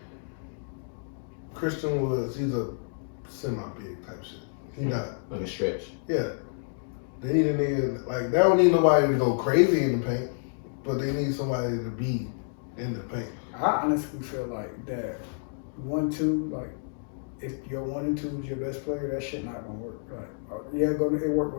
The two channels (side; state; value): right; silent; digital silence